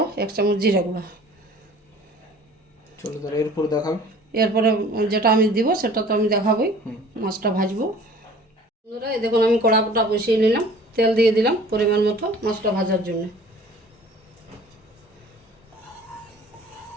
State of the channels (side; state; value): both; normal; correlation 0.48